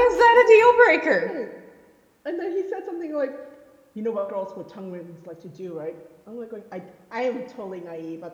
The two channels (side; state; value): both; identical; correlation 1.00